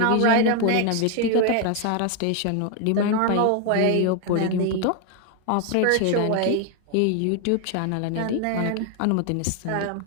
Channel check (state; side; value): different; both; correlation 0.01